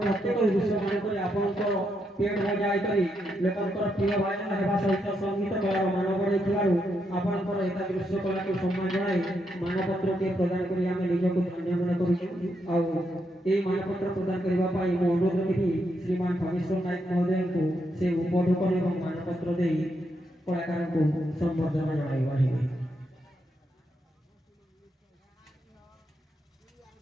ପ୍ରତ୍ୟେକ ଦୃଶ୍ୟମାନଙ୍କରେ ଆପଣଙ୍କର ପେଟ ବଜାଇ କରି ଲୋକଙ୍କର ପ୍ରିୟ ଭାଜନ ହେବା ସହିତ ସଙ୍ଗୀତ କଳାର ମାନ ବଢ଼ାଇଥିବାରୁ ଆପଣଙ୍କର ଏହି ଦୃଶ୍ୟ କଳାକୁ ସମ୍ମାନ ଜଣାଇ ମାନପତ୍ରଟିଏ ପ୍ରଦାନ କରି ଆମେ ନିଜକୁ ଧନ୍ୟ ମନେ କରୁଛୁ। ଆଉ ଏହି ମାନପତ୍ର ପ୍ରଦାନ କରିବା ପାଇଁ ମୁଁ ଅନୁରୋଧ କରିବି ଶ୍ରୀମାନ ଖଗେଶ୍ୱର ନାୟକ ମହୋଦୟଙ୍କୁ ସେ ଉପଢୌକନ ଏବଂ ମାନପତ୍ର ଦେଇ କଳାକାରଙ୍କୁ ସମ୍ବର୍ଦ୍ଧନା ଜଣାଇପାରିବେ।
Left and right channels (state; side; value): normal; both; correlation 0.80